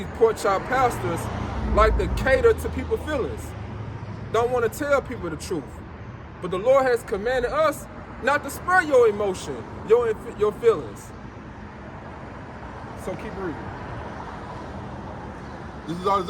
pork chop pastors like to cater to people's feelings. Don't want to tell people the truth. But the Lord has commanded us not to spare your emotion, your feelings. So keep reading. This is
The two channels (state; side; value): identical; both; correlation 1.00